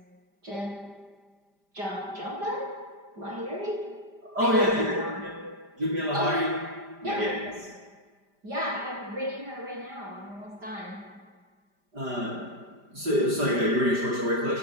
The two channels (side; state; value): left; late; 5.0 ms